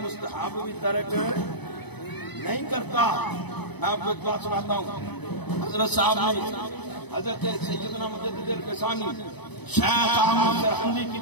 مستحب بھی ترک نہیں کرتا. میں آپ کو ایک بات سناتا ہوں. حضرت صاحب نے حضرت سیدنا مجدد الفسانی شیخ احمد سرہندی کی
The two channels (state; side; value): late; right; 0.98 ms